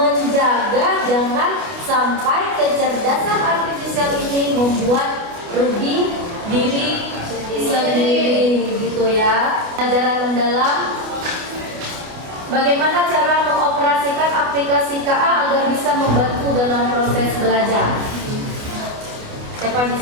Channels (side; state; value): left; late; 29 ms